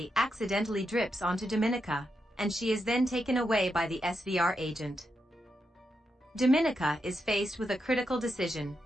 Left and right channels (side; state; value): both; normal; correlation 0.85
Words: accidentally drips onto Dominika, and she is then taken away by the SVR agent. Dominika is faced with a critical decision: